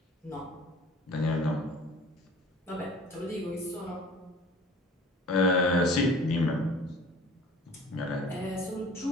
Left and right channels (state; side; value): normal; both; correlation 0.46